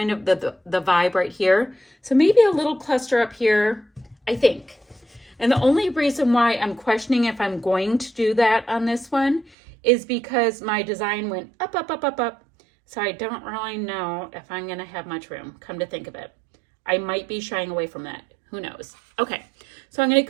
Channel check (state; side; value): drops out; left; at 9.6 s